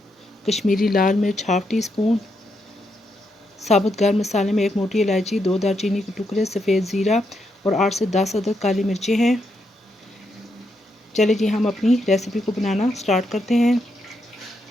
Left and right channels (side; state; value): both; normal; correlation 0.81